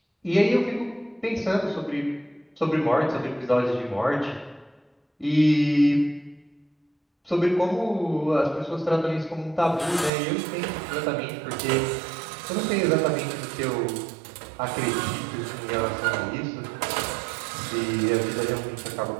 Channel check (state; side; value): drops out; left; at 10.1 s